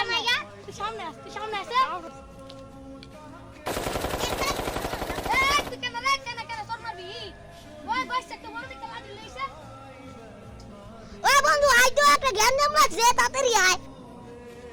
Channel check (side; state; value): both; identical; correlation 1.00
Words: গা তুই সামনে আস তুই সামনে আসে এই তুই কেন রে কেন তোর মারবি ওই বসে তো বড় দিকে লাঠি লইছে ও বন্ধু আই তো একটা গেম নাম লাগছে তাড়াতাড়ি আয়